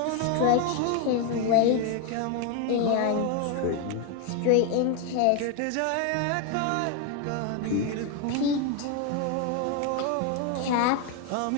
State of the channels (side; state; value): both; different; correlation 0.01